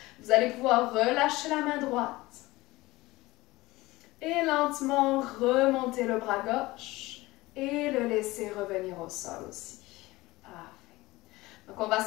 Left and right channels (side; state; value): right; quieter; 19.8 dB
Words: Vous allez pouvoir relâcher la main droite. Et lentement remonter le bras gauche. Et le laisser revenir au sol aussi. Parfait. Donc on va